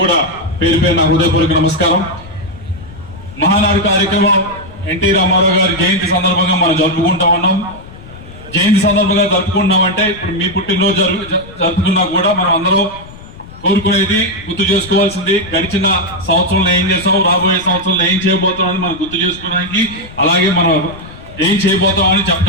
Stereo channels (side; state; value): left; noise; rumble, 18 dB below the sound